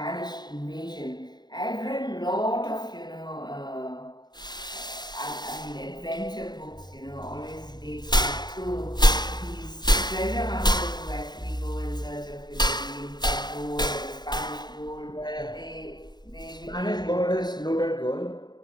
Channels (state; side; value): late; right; 0.20 ms